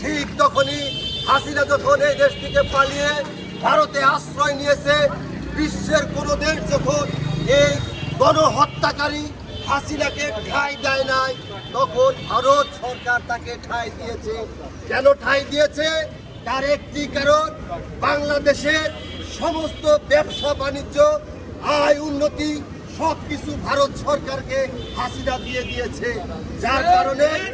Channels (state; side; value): identical; both; correlation 1.00